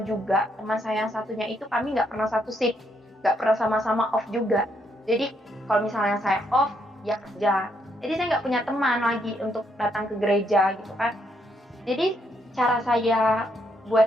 juga, teman saya yang satunya itu kami nggak pernah satu shift, nggak pernah sama-sama off juga. Jadi kalau misalnya saya off, dia kerja. Jadi saya nggak punya teman lagi untuk datang ke gereja gitu kan. Jadi cara saya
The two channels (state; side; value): normal; both; correlation 0.75